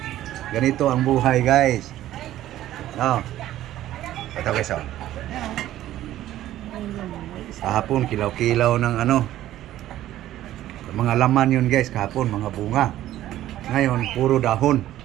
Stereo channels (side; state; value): left; quieter; 13.6 dB